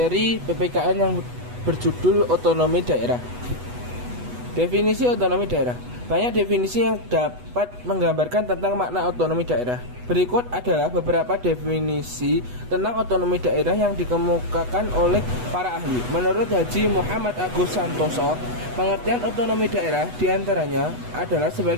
PPKN yang berjudul otonomi daerah. Definisi otonomi daerah. Banyak definisi yang dapat menggambarkan tentang makna otonomi daerah. Berikut adalah beberapa definisi tentang otonomi daerah yang dikemukakan oleh para ahli. Menurut Haji Muhammad Agus Santoso, pengertian otonomi daerah diantaranya adalah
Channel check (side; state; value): left; late; 8.1 ms